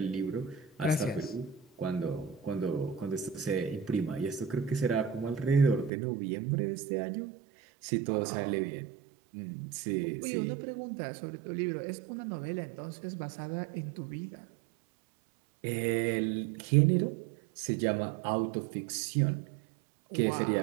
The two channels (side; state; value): left; drops out; at 5.9 s